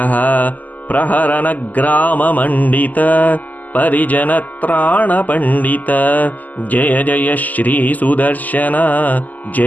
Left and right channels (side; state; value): right; late; 0.081 ms